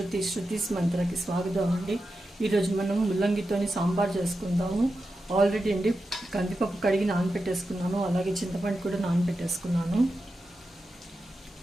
శృతిస్ మంత్రకి స్వాగతం అండి. ఈరోజు మనం ముల్లంగితో సాంబార్ చేసుకుందాము. ఆల్రెడీ అండి కందిపప్పు కడిగి నానబెట్టేసుకున్నాను, అలాగే చింతపండు కూడా నానబెట్టేసుకున్నాను.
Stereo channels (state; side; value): normal; both; correlation 0.90